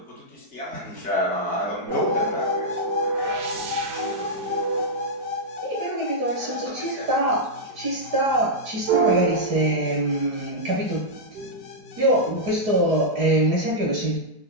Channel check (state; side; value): late; left; 4.7 ms